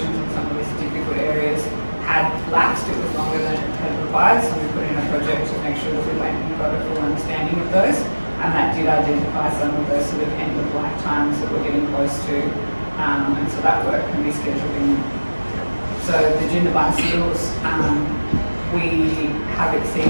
in some of these difficult areas had lapsed. It was longer than it had required, so we put in a project to make sure that we went and got a full understanding of those, and that did identify some of those sort of end of life times that we're getting close to, and so that work can be scheduled in. So the Jindabyne seals, we have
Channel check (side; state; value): both; inverted; correlation -1.00